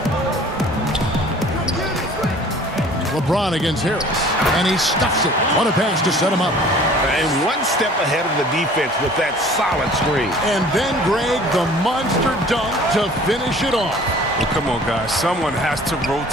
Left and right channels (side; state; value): both; normal; correlation 0.49